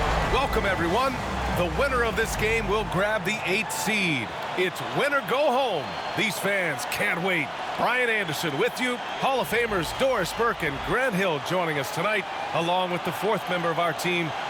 Welcome, everyone. The winner of this game will grab the 8th seed. It's win or go home. These fans can't wait. Brian Anderson with you. Hall of Famers Doris Burke and Grant Hill joining us tonight, along with the 4th member of our team,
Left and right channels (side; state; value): both; identical; correlation 1.00